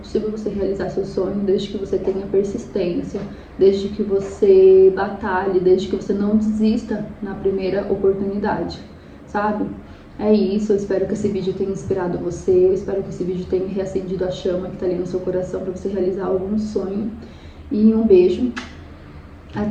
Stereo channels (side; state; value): both; identical; correlation 1.00